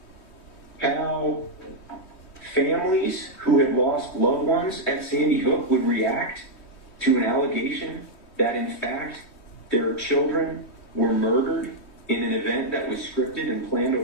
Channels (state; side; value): late; right; 3.2 ms